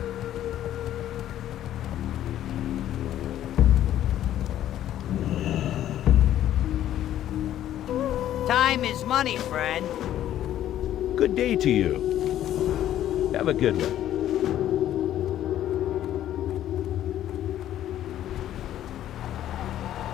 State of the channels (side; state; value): right; quieter; 12.0 dB